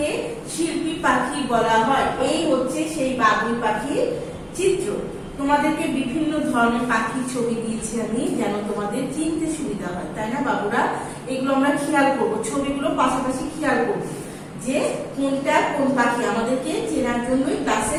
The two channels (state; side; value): identical; both; correlation 1.00